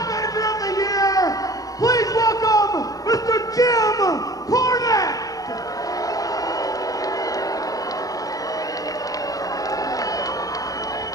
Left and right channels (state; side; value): late; right; 0.17 ms